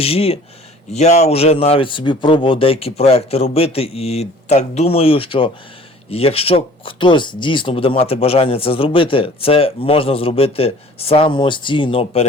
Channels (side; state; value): both; normal; correlation 0.49